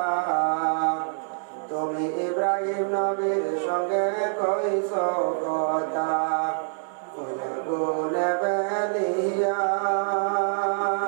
তুমি ইব্রাহিম নবীর সঙ্গে কইছো কথা, ওই আগুনে ফেলিয়া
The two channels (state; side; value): silent; left; digital silence